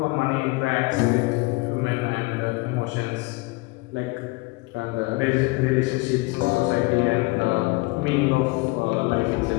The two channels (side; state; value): right; quieter; 24.8 dB